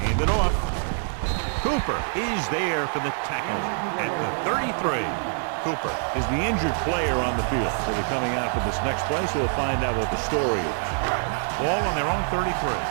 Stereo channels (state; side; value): silent; left; 62 dB below the other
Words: Hand it off. Cooper is there for the tackle at the 33. Cooper is the injured player on the field. So they're coming out for this next play, so we'll find out what the story is. Ball on their own 33.